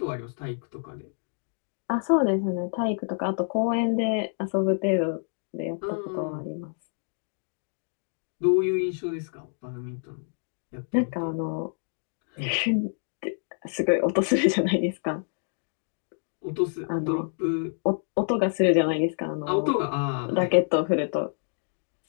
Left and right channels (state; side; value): silent; right; digital silence